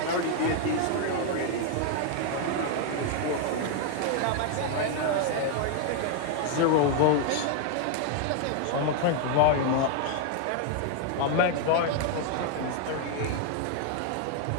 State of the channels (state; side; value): different; both; correlation 0.00